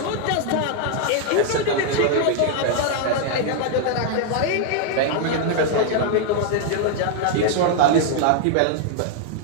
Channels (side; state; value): both; different; correlation 0.00